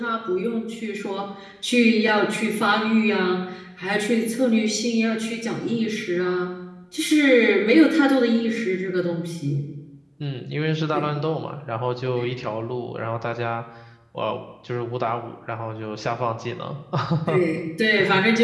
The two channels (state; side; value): identical; both; correlation 1.00